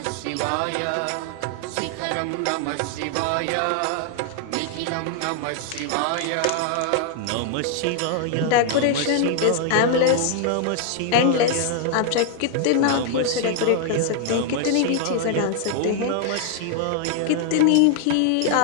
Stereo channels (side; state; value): both; different; correlation 0.00